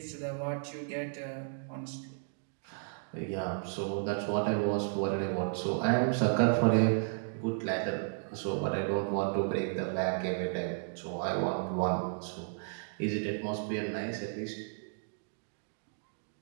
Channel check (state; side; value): silent; left; digital silence